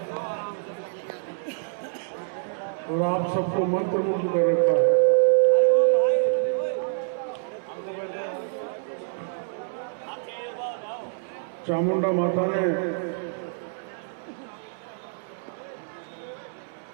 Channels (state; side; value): silent; left; 61 dB below the other